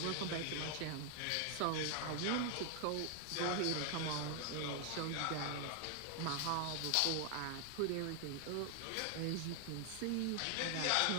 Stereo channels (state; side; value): different; both; correlation 0.00